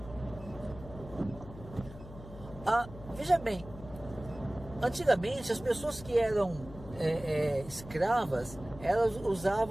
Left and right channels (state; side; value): noise; left; hum, 15 dB below the sound